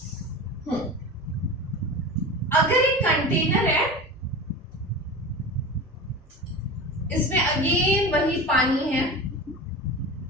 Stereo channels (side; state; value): both; normal; correlation 0.30